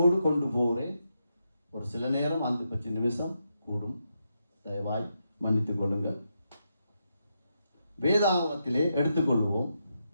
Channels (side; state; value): both; inverted; correlation -0.83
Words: கொண்டு போகிறேன். ஒரு சில நேரம் 5 நிமிஷம் கூடும், தயவாய் மன்னித்துக் கொள்ளுங்கள். வேதாகமத்திலே எடுத்துக்கொள்வோம்,